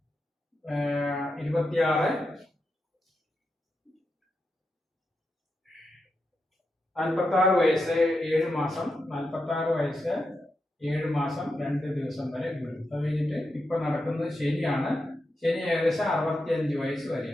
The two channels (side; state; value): both; normal; correlation 0.87